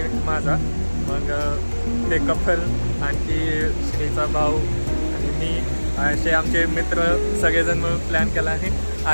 माझा. मग ते कपल आणखी श्रीचा भाऊ आणि मी असे आमचे मित्र सगळेजण मिळून प्लॅन केला आणि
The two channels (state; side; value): inverted; both; correlation -1.00